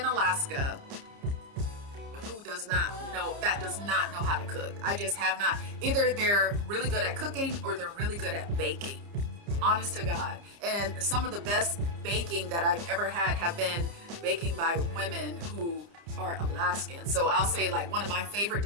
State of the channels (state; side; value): late; left; 30 ms